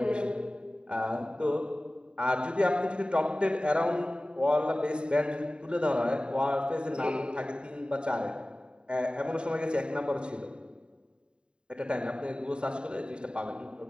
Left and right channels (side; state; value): left; late; 0.050 ms